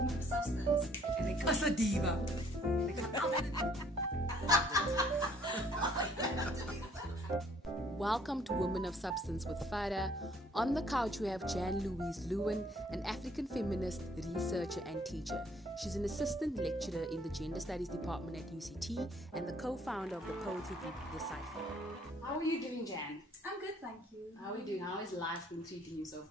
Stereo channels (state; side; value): normal; both; correlation 0.61